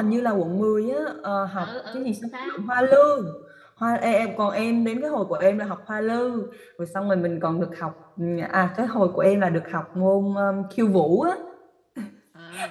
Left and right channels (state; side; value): identical; both; correlation 1.00